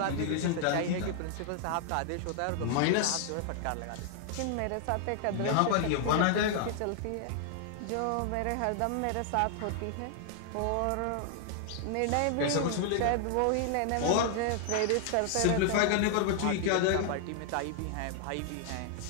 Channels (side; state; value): both; different; correlation 0.00